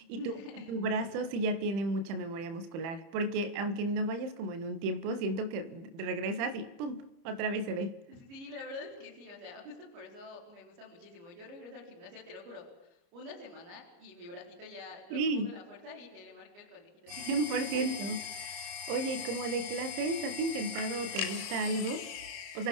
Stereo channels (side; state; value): left; late; 30 ms